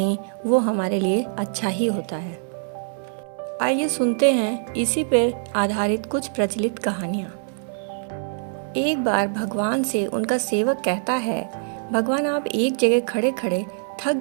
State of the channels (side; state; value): left; silent; 63 dB below the other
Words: वो हमारे लिए अच्छा ही होता है। आइए सुनते हैं इसी पे आधारित कुछ प्रचलित कहानियाँ। एक बार भगवान से उनका सेवक कहता है, भगवान आप एक जगह खड़े खड़े थक